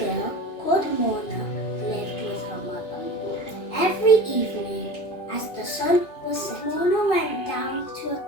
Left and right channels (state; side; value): late; right; 2.4 ms